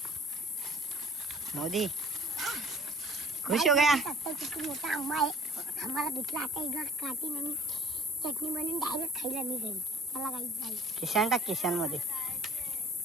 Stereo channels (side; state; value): both; normal; correlation 0.51